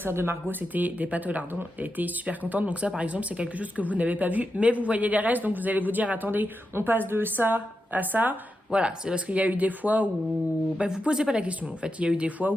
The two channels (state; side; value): normal; both; correlation 0.88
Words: de Margot c'était des pâtes au lardon. Elle était super contente, donc ça par exemple c'est quelque chose que vous n'avez pas vu, mais vous voyez les restes, donc vous allez vous dire attendez, on passe de ça à ça. Voilà, c'est parce qu'il y a eu des fois où... vous posez pas la question en fait, il y a eu des fois